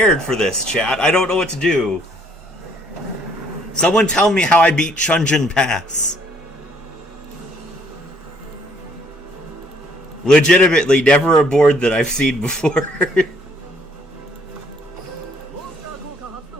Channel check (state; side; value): normal; both; correlation 0.64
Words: for this, chat. I don't know what to do. Someone tell me how I beat Chunjin Pass. Legitimately, never a board that I've seen before.